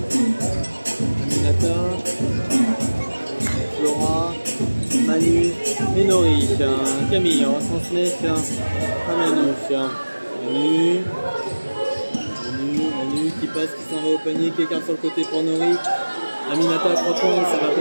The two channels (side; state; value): both; inverted; correlation -1.00